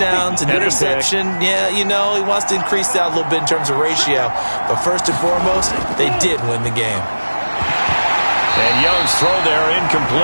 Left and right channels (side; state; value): both; inverted; correlation -1.00